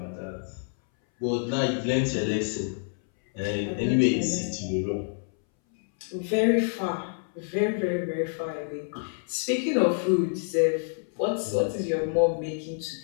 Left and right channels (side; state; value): right; silent; 60 dB below the other